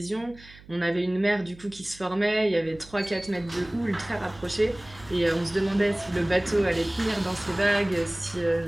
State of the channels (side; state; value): right; noise; hum, 22 dB below the sound